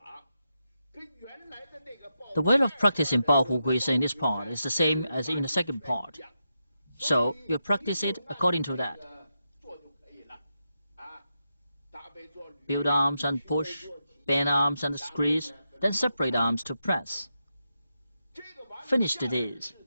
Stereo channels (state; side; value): inverted; both; correlation -0.86